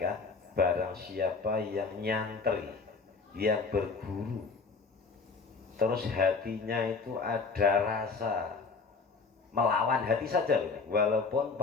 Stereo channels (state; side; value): quieter; right; 4.6 dB